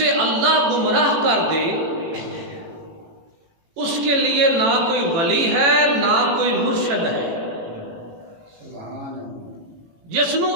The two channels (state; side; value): late; left; 18 ms